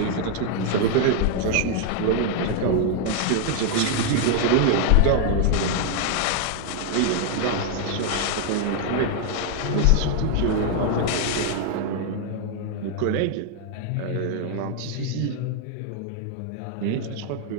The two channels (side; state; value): both; different; correlation 0.00